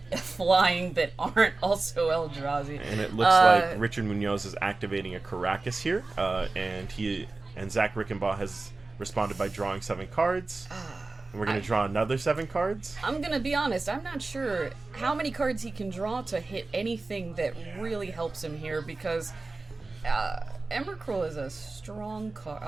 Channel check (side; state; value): left; quieter; 3.5 dB